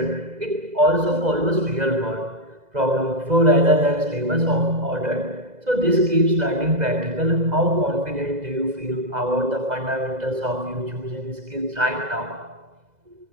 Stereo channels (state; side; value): late; left; 2.0 ms